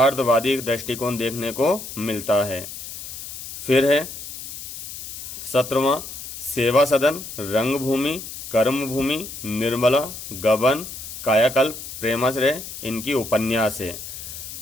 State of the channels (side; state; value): left; noise; hiss, 10 dB below the sound